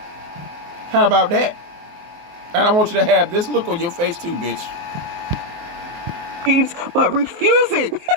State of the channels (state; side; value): late; left; 23 ms